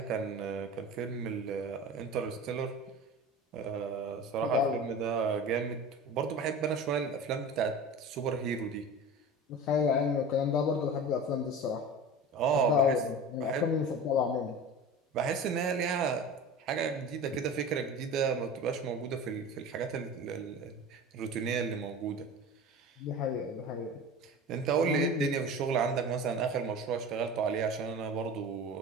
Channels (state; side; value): normal; both; correlation 0.34